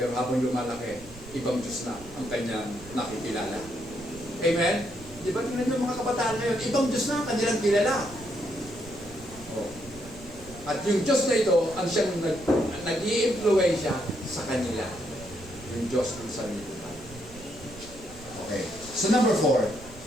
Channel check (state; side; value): noise; right; rumble, 18 dB below the sound